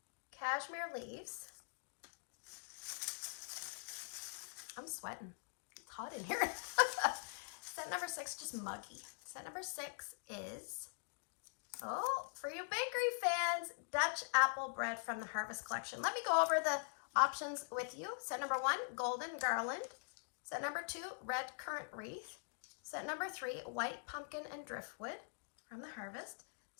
Cashmere Leaves. I'm sweating. It's hot in here. Scent number 6, just muggy. Scent number 6 is, oh, for you bakery fans, Dutch Apple Bread from the Harvest Collection. Let me go over the options with you. Scent number 1, Golden Garland. Scent number 2, Red Currant Wreath. Scent number 3, White Pumpkin and Driftwood from the Harvest.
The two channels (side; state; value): right; silent; digital silence